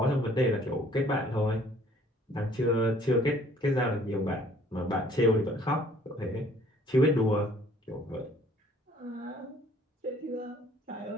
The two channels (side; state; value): both; normal; correlation 0.57